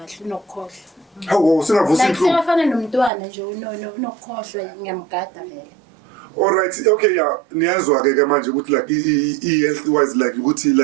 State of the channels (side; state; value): left; drops out; at 3.1 s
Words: unokukhohlwa. Hawu singavusi Like inhlungu. siyafana nomntwana nje unokukhohlwa ngiyamgada vele. All right, okay, yeah. Niyazwa ke manje ukuthi like health wise like ukuthi